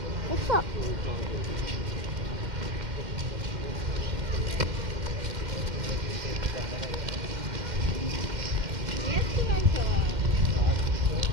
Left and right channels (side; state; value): left; late; 2.1 ms